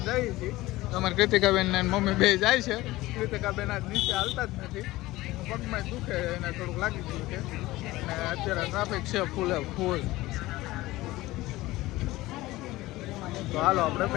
જઈએ છીએ. તમારે કૃતિકાબેન ને મમ્મી બે જાય છે. કૃતિકાબેન આજ નીચે હાલતા જ નથી, પગમાં દુખે એને થોડુંક લાગી ગયું છે. અને અત્યારે ટ્રાફિક છે ફૂલ. તો હાલો આપણે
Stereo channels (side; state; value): right; quieter; 18.3 dB